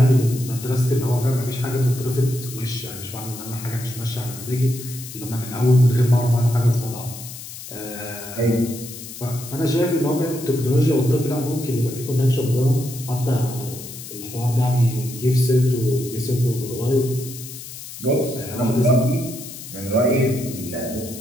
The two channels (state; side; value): noise; left; hiss, 12 dB below the sound